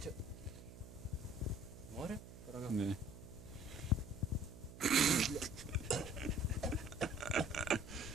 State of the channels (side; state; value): right; noise; hum, 15 dB below the sound